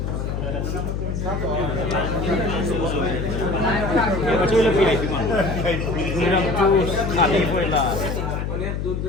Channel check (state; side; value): noise; left; hum, 2 dB below the sound